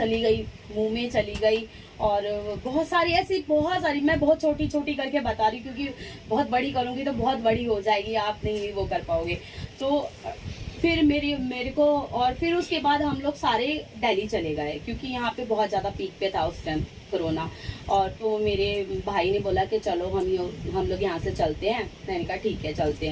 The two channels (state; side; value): identical; both; correlation 1.00